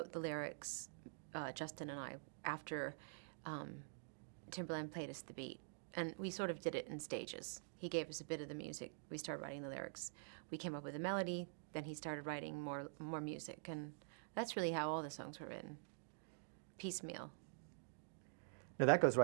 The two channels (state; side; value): silent; left; digital silence